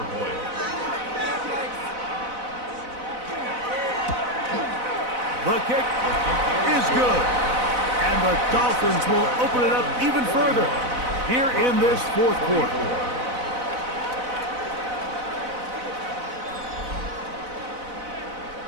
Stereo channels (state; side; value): late; left; 4.0 ms